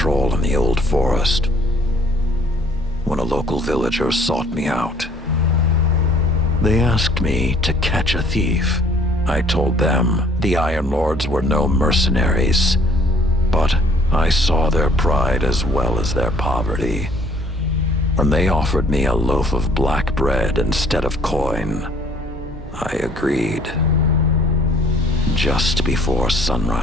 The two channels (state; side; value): normal; both; correlation 0.58